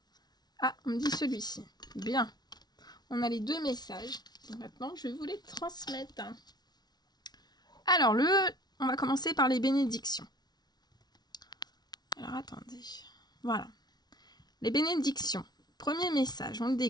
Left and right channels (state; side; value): late; right; 0.19 ms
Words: Ah, on me dit celui-ci. Bien. On a les deux messages. Donc maintenant, je vais vous les transmettre. Alors, on va commencer par les bénédictions. Alors, attendez. Voilà. Les bénédictions. Premier message, on le